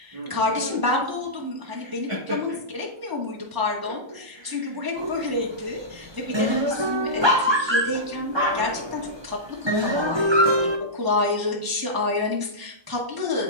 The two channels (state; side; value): late; left; 1.0 ms